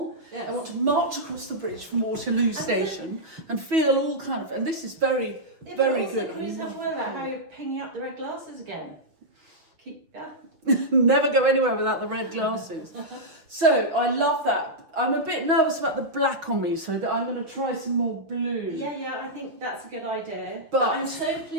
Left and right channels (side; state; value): left; late; 6.2 ms